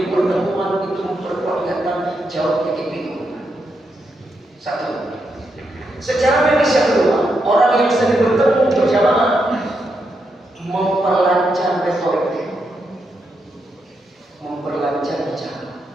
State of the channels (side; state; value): both; normal; correlation 0.82